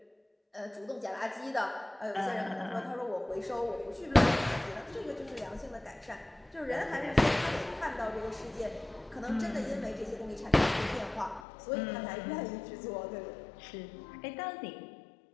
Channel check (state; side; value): drops out; right; at 11.4 s